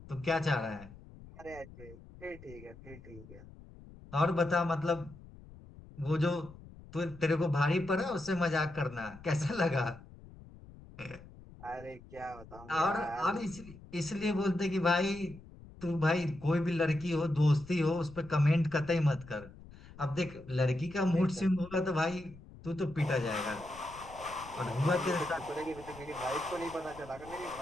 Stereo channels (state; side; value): noise; left; rumble, 19 dB below the sound